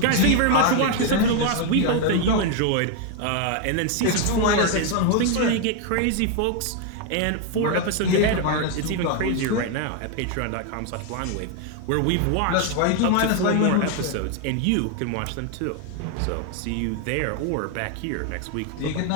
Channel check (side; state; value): both; different; correlation 0.01